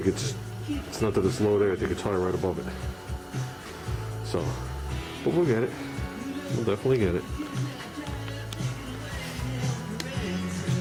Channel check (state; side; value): identical; both; correlation 1.00